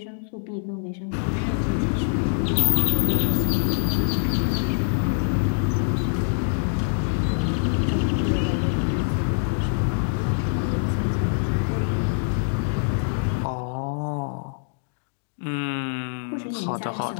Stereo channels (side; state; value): right; silent; digital silence